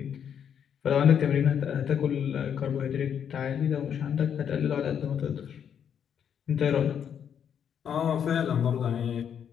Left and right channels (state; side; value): quieter; right; 8.4 dB